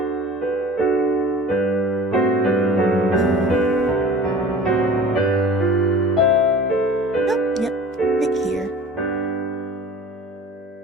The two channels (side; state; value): both; normal; correlation 0.42